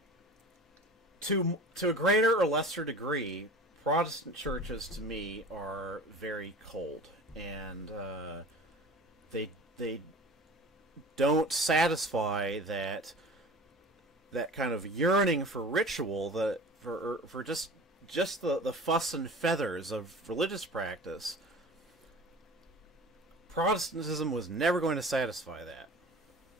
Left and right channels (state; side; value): normal; both; correlation 0.39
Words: to a greater or lesser degree, Protestant churches to me are very cold, and they don't satisfy that kind of yearning for ritual, for just the fuss and feathers of religious practice. Protestantism was never going to satisfy that.